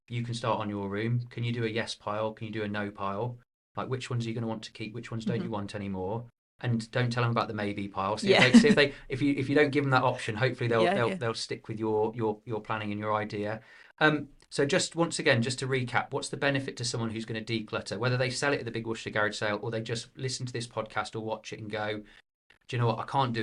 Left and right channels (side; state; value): both; identical; correlation 1.00